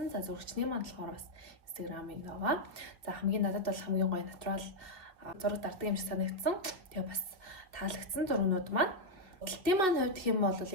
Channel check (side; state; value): left; late; 2.5 ms